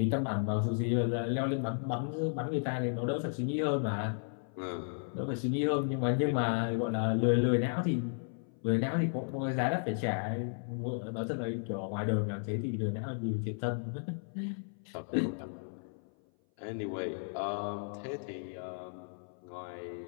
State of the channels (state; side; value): silent; right; 55 dB below the other